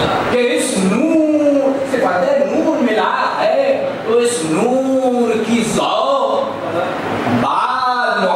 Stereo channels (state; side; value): identical; both; correlation 1.00